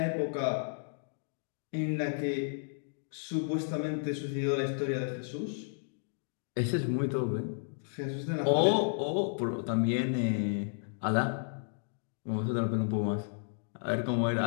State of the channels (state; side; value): silent; right; digital silence